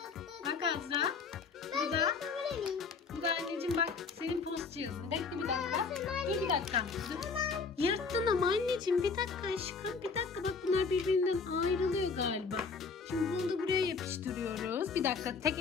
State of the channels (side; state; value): right; quieter; 5.0 dB